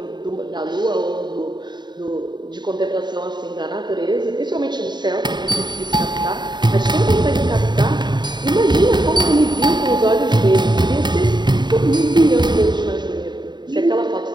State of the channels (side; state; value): left; late; 0.21 ms